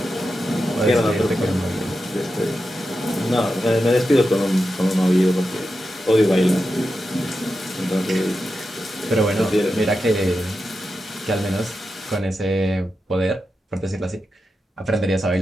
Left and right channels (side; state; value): both; normal; correlation 0.90